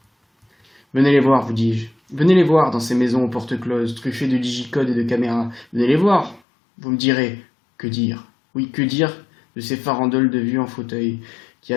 Venez les voir, vous dis-je. Venez les voir dans ces maisons aux portes closes, truffées de digicodes et de caméras. Venez les voir. Vous me direz, que dire? Oui, que dire de ces farandoles de vieux en fauteuil, qui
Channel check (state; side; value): drops out; right; at 6.4 s